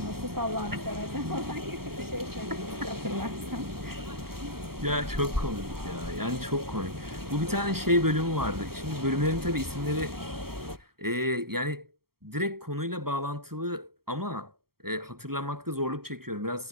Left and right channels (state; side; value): late; left; 0.94 ms